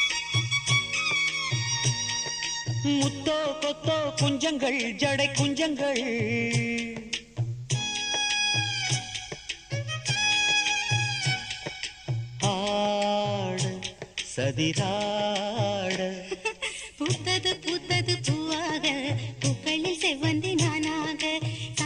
முத்தோ கொத்தோ குஞ்சங்கள் ஜடை குஞ்சங்கள் ஆட சதிராட பூத்தது பூத்தது பூவாக பூக்களில் செவ்வந்தி நானாக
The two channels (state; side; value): identical; both; correlation 1.00